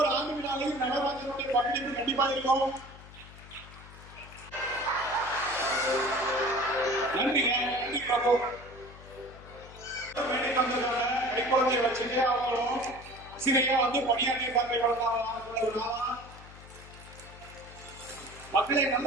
ஆண்டு விழாவில் நடராஜனுடைய பங்களிப்பு கண்டிப்பா இருக்கும். நன்றிங்க. நன்றி பிரபு. கை குழந்தைய வச்சுட்டு அவங்களும் ஆசிரியரா வந்து பணியாற்றிய மக்களை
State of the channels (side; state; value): left; noise; hum, 18 dB below the sound